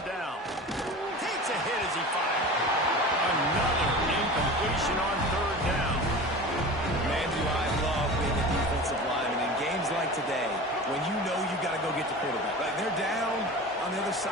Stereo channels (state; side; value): normal; both; correlation 0.34